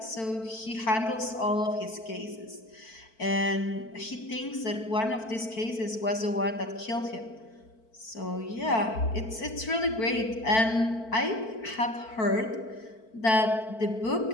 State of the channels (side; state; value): right; late; 4.5 ms